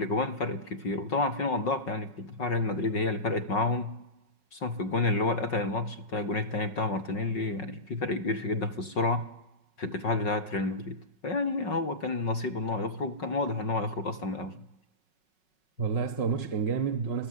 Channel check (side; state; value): right; late; 5.4 ms